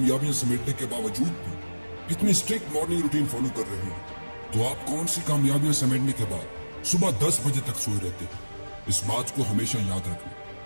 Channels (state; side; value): inverted; both; correlation -1.00